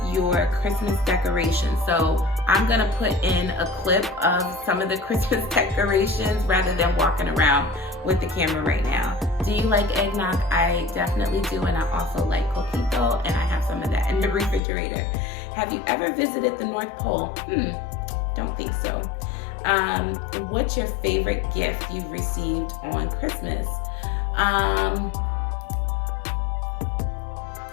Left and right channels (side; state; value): right; drops out; at 14.6 s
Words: your Christmas decorations. So I'm gonna put in a clip of some of the Christmas decorations rather than walking around with the camera right now. Do you like eggnog? I definitely do, and I also like coquito, and I have some of that in the refrigerator. Have you ever visited the North Pole? Don't think so. What's your favorite gift you've received on Christmas? I